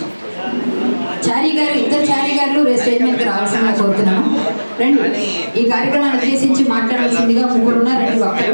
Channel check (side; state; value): both; inverted; correlation -1.00